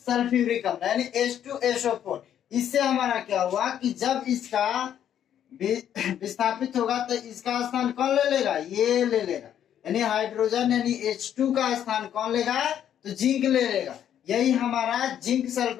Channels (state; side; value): quieter; right; 10.0 dB